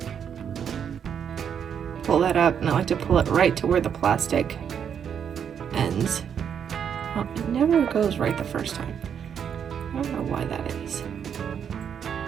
pull that up. And I like to pull it right to where the plastic ends. Oh, it never goes right the first time. I don't know why that is.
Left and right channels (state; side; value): quieter; left; 7.9 dB